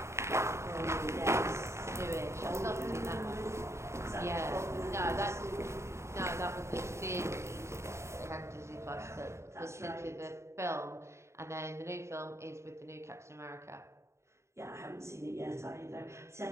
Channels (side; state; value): left; late; 0.13 ms